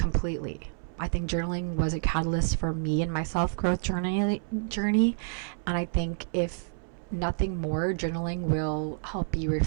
I think journaling was a catalyst for me and my self-growth journey. And I think if nothing more, journaling will help you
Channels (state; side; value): silent; left; 59 dB below the other